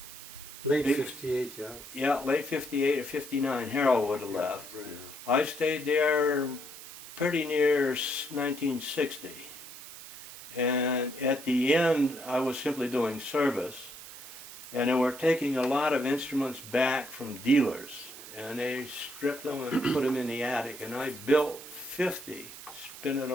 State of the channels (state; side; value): noise; right; hiss, 14 dB below the sound